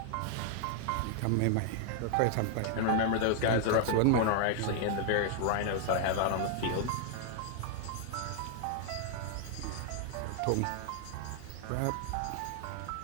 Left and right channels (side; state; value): both; different; correlation 0.00